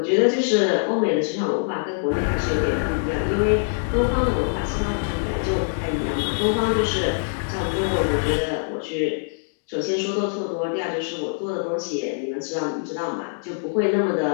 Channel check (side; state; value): right; silent; digital silence